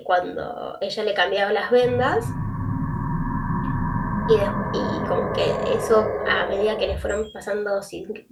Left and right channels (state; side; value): identical; both; correlation 1.00